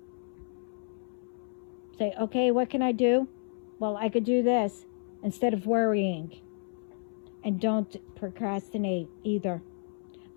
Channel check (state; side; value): silent; right; 57 dB below the other